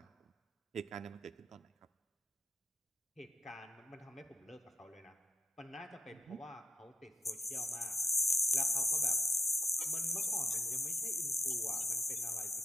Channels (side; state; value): both; normal; correlation 0.79